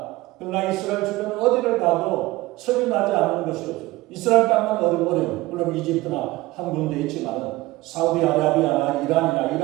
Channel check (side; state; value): left; quieter; 19.2 dB